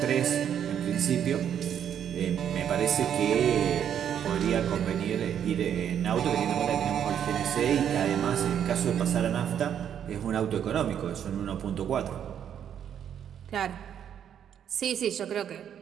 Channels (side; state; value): left; quieter; 9.1 dB